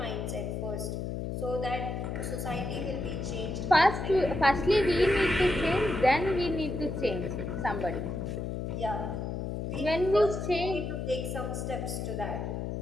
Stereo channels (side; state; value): left; noise; hum, 4 dB below the sound